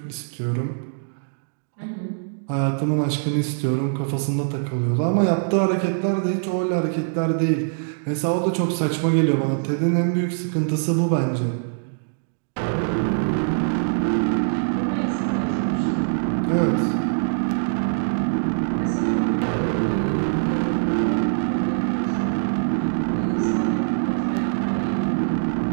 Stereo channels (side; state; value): left; silent; digital silence